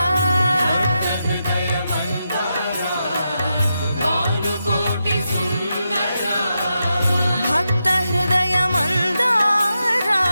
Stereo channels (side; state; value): both; inverted; correlation -0.86